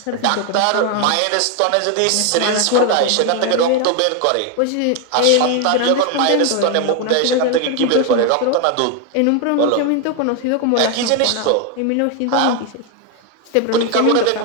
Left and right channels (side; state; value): both; different; correlation 0.01